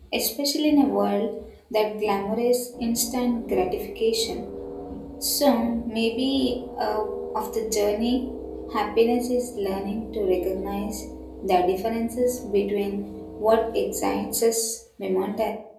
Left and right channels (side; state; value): both; identical; correlation 1.00